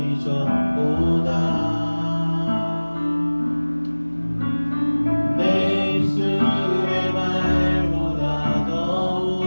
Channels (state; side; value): inverted; both; correlation -1.00